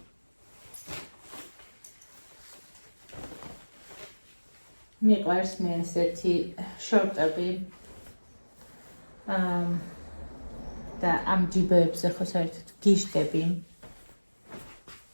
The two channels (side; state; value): both; inverted; correlation -1.00